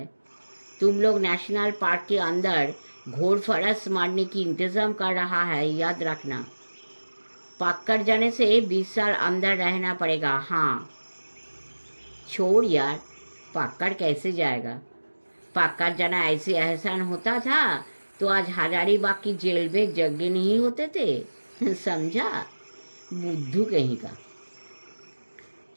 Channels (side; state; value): both; inverted; correlation -1.00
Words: तुम लोग नेशनल पार्क के अंदर घोड़ फरस मारने की इंतजाम कर रहा है, याद रखना। पकड़ जाने से 20 साल अंदर रहना पड़ेगा। हाँ। छोड़ यार, पकड़ कैसे जाएगा? पकड़ जाना ऐसे एहसान होता था तो आज हजारीबाग की जेल में जगह नहीं होते थे, समझा? बुद्धू कहीं का।